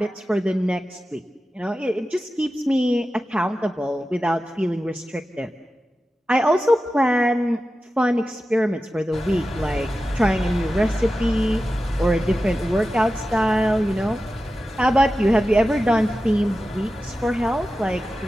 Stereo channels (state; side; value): normal; both; correlation 0.93